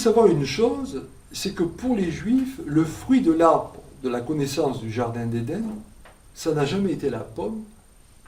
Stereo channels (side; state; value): both; identical; correlation 1.00